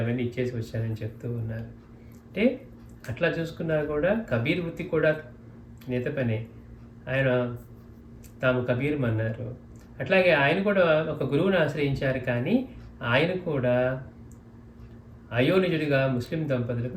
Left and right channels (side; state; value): both; identical; correlation 1.00